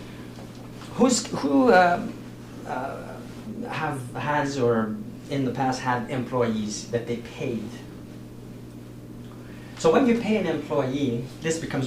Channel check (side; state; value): both; identical; correlation 1.00